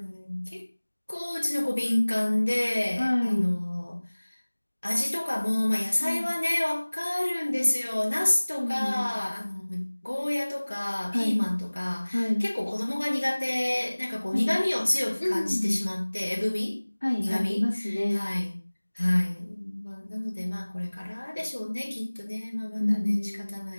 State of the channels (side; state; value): both; inverted; correlation -1.00